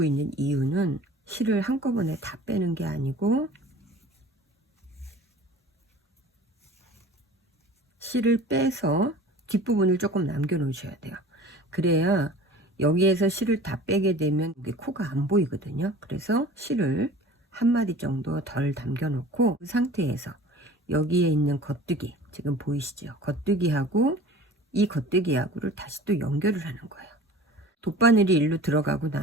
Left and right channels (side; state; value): both; normal; correlation 0.43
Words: 있는 이유는 실을 한꺼번에 다 빼는 게 아니고 실을 빼서 뒷부분을 조금 남겨 놓으셔야 돼요. 그래야 여기에서 실을 다 빼게 되면 여기 코가 안 보이거든요. 그래서 실을 한 마디 정도 덜 담겨 놓고 그 상태에서 여기에 있는 겉뜨기 지금 보이시죠? 겉뜨기하고 이 겉뜨기하고를 다시 또 연결을 하는 거예요. 돗바늘이 일로 들어가고